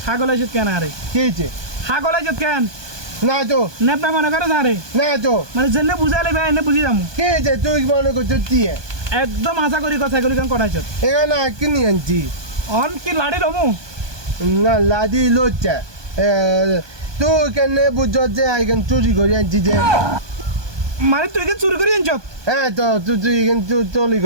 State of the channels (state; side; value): late; left; 1.2 ms